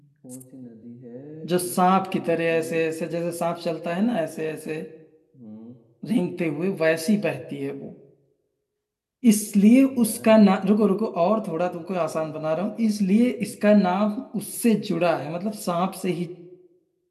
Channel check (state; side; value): identical; both; correlation 1.00